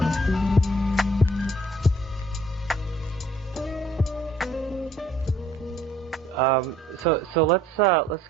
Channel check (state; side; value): normal; both; correlation 0.61